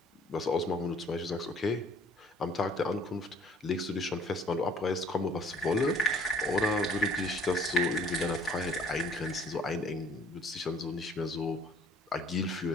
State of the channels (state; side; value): normal; both; correlation 0.55